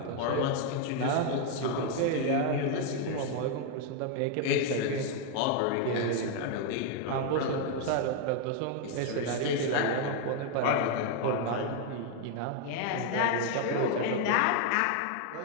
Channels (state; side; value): different; both; correlation 0.01